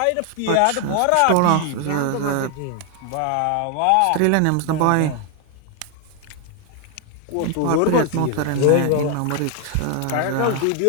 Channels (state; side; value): different; both; correlation 0.00